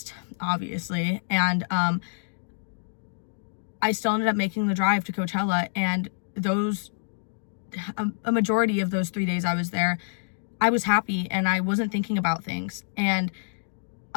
obviously. And I still ended up making the drive to Coachella, and a majority of those 3 days I was there, I was happy and I wasn't thinking about things. And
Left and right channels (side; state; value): right; silent; digital silence